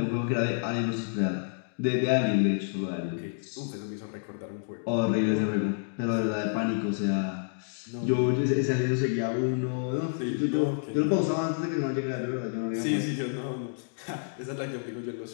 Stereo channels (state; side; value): silent; right; digital silence